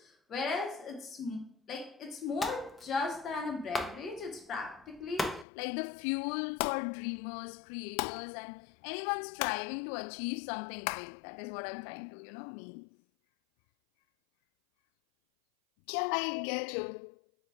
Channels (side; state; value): right; drops out; at 5.5 s